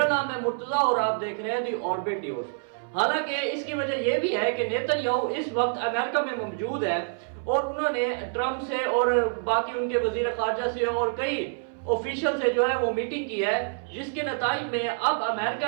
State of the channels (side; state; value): left; silent; 60 dB below the other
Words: نام ہے مرتضیٰ اور آپ دیکھ رہے ہیں دی آربٹ نیوز۔ حالانکہ اس کی وجہ یہ بھی ہے کہ نیتن یاہو اس وقت امریکہ میں موجود ہے اور انہوں نے ٹرمپ سے اور باقی ان کے وزیر خارجہ سے اور کئی آفیشل سے جو ہے وہ میٹنگ کی ہے، جس کے نتائج میں اب